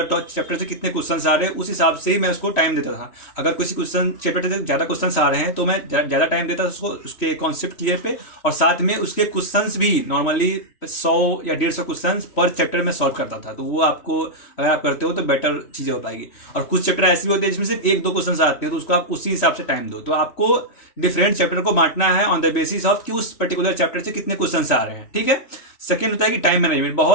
चैप्टर से कितने क्वेश्चंस आ रहे हैं, उस हिसाब से ही मैं उसको टाइम देता था। अगर किसी क्वेश्चन चैप्टर से ज्यादा क्वेश्चंस आ रहे हैं तो मैं ज्यादा टाइम देता था उसको, उसके कॉन्सेप्ट क्लियर पे, और साथ में उसके क्वेश्चंस भी नॉर्मली 100 या 150 क्वेश्चन पर चैप्टर में सॉल्व करता था। तो वो आपको अगर आप करते हो तो बेटर चीजें हो पाएगी। और कुछ चैप्टर ऐसे भी होते हैं जिसमें सिर्फ 1-2 क्वेश्चन आते हैं, तो उसको आप उसी हिसाब से टाइम दो। तो आपको डिफरेंट चैप्टर को बांटना है ऑन द बेसिस ऑफ कि उस पर्टिकुलर चैप्टर से कितने क्वेश्चंस आ रहे हैं। ठीक है। सेकंड होता है कि टाइम मैनेजमेंट।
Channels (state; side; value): late; right; 3.1 ms